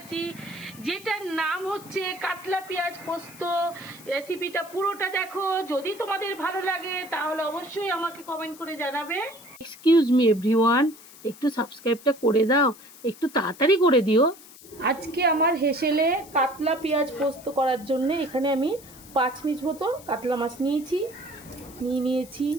যেটার নাম হচ্ছে কাতলা পেঁয়াজ পোস্ত। রেসিপিটা পুরোটা দেখো, যদি তোমাদের ভালো লাগে তাহলে অবশ্যই আমাকে কমেন্ট করে জানাবে। এক্সকিউজ মি এভরিওয়ান, একটু সাবস্ক্রাইবটা করে দাও, একটু তাড়াতাড়ি করে দিও। আজকে আমার হেসেলে কাতলা পেঁয়াজ পোস্ত করার জন্য এখানে আমি 5 পিস মতো কাতলা মাছ নিয়েছি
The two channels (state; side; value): noise; left; hiss, 20 dB below the sound